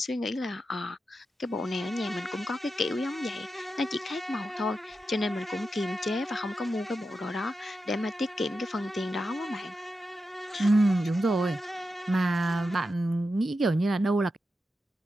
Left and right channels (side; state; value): both; normal; correlation 0.89